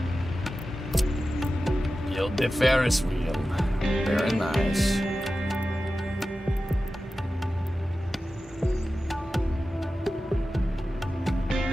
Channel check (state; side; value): normal; both; correlation 0.94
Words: build the Ferris wheel, very nice.